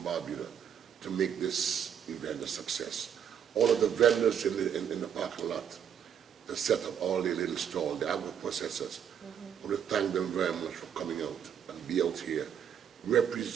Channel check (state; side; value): quieter; left; 8.5 dB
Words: to make this event a success. All of the vendors in the parking lot that set up all the little stalls, the agro-processors. I want to thank them very much for coming out and be out here